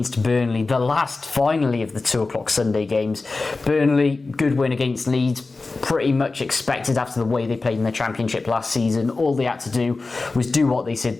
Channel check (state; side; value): quieter; right; 3.6 dB